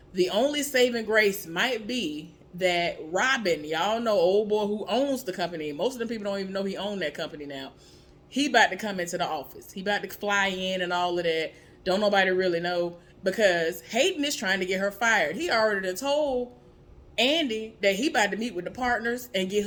the only saving grace might be that Robin, y'all know old boy who owns the company. Most of the people don't even know he owned that company now. He about to come into the office. He about to fly in and all of that. Don't nobody really know because Hayden is trying to get her fired. He already done told Andy that he about to meet with the partners and get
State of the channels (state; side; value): identical; both; correlation 1.00